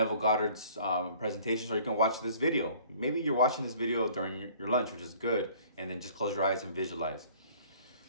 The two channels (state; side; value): inverted; both; correlation -0.53